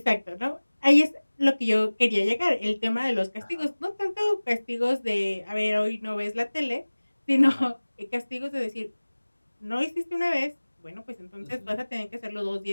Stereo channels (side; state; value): both; inverted; correlation -1.00